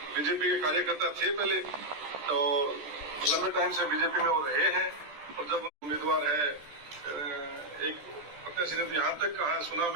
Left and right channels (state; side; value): late; left; 13 ms